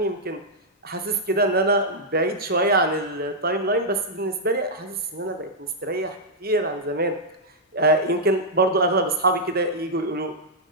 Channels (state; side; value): normal; both; correlation -0.07